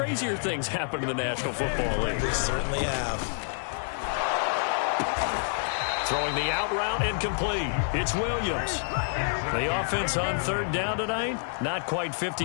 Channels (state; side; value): silent; right; digital silence